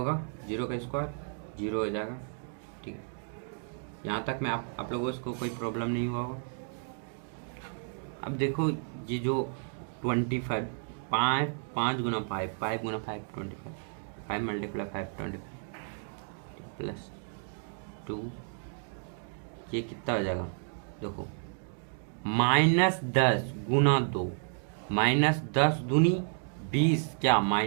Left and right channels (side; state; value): left; silent; 56 dB below the other